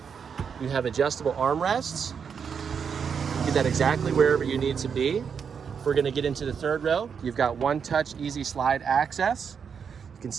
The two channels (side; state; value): left; quieter; 6.7 dB